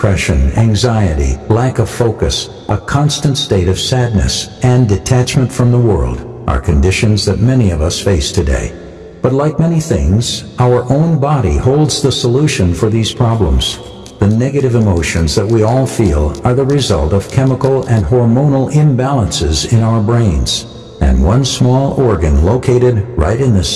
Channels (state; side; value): identical; both; correlation 1.00